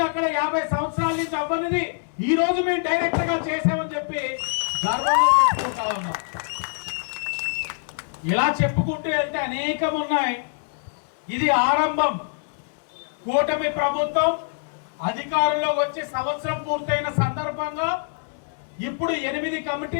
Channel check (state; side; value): silent; right; digital silence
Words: అక్కడ 50 సంవత్సరాల నుంచి అవ్వనిది ఈ రోజు మేము డైరెక్టర్ గా చేసామని చెప్పి గర్వంగా చెప్పుకుంటా ఉన్నాం. ఇలా చెప్పుకుంటూ వెళ్తే అనేకం ఉన్నాయి. ఇది ఆరంభం. కూటమి ప్రభుత్వం అధికారంలో వచ్చి సంవత్సరం పూర్తయిన సందర్భంగా ఇప్పుడు 8